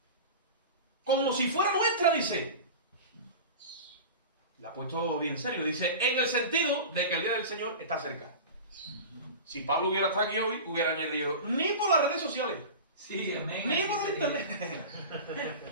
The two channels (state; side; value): inverted; both; correlation -0.31